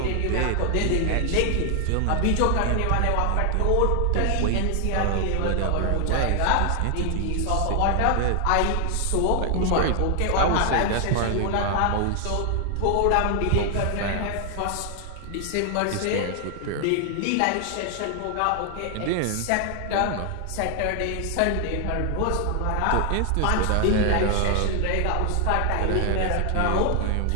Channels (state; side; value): different; both; correlation 0.00